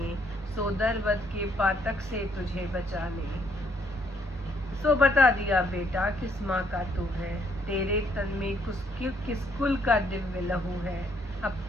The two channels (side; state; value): both; normal; correlation 0.69